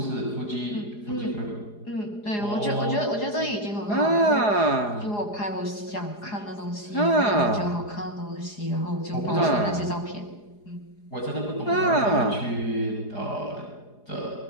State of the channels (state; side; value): late; right; 4.8 ms